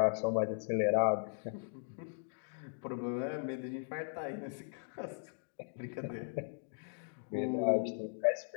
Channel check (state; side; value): silent; right; digital silence